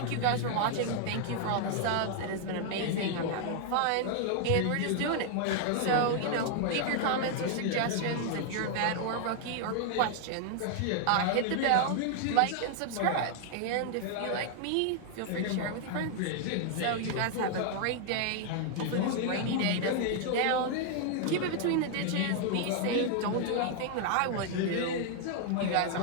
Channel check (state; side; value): different; both; correlation 0.00